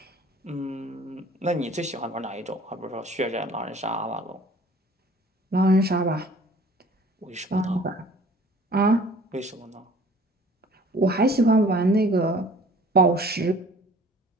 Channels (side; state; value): both; normal; correlation 0.50